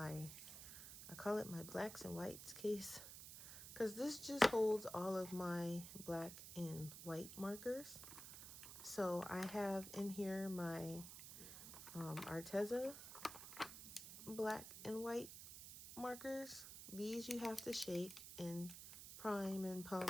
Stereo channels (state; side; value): noise; right; hiss, 11 dB below the sound